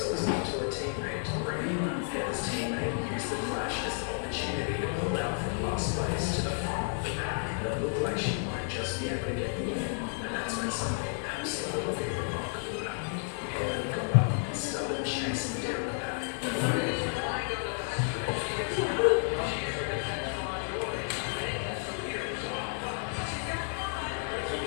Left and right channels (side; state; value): right; silent; 57 dB below the other